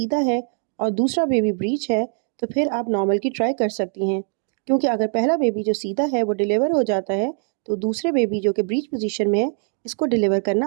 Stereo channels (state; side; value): silent; left; 56 dB below the other